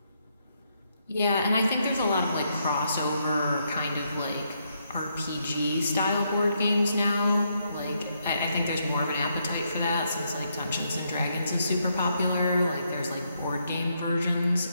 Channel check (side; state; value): both; inverted; correlation -0.77